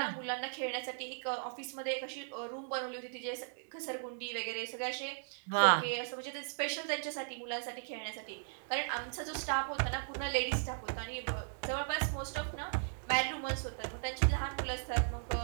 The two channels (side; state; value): left; silent; digital silence